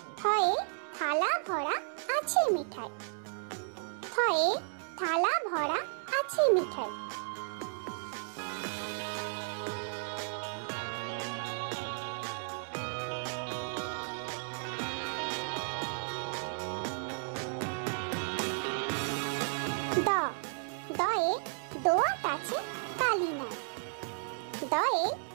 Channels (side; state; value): left; silent; digital silence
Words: থয়ে থালা ভরা আছে মিঠাই, থয়ে থালা ভরা আছে মিঠাই। জ, দয়ে